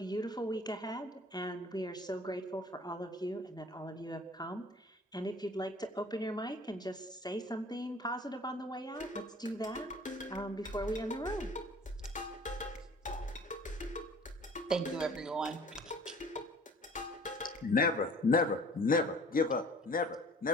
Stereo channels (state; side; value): normal; both; correlation 0.48